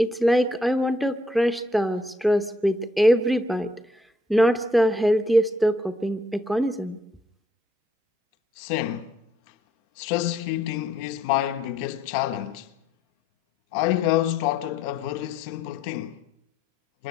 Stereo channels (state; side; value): normal; both; correlation 0.70